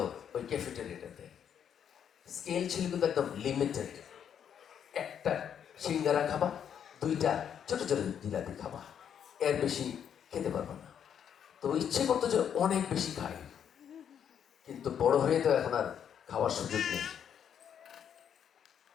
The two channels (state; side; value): quieter; right; 8.6 dB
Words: ওই ক্যাফেটেরিয়াটাতে। স্কেল ছিল কিন্তু একদম লিমিটেড। একটা সিঙ্গারা খাবা, 2টা ছোট ছোট জিলাপি খাবা, এর বেশি খেতে পারবো না। তো ইচ্ছে করতো যে অনেক বেশি খাই, কিন্তু বড় হয়ে তো এখন আর খাওয়ার সুযোগ নেই।